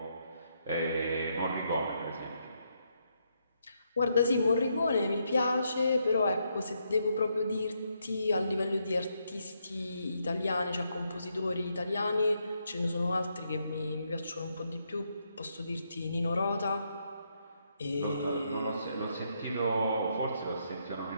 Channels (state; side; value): inverted; both; correlation -0.78